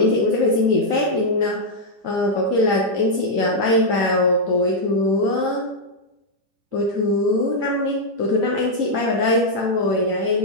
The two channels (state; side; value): late; left; 10 ms